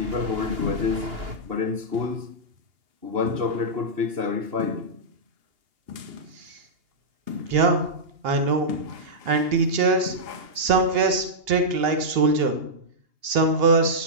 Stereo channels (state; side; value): late; left; 2.8 ms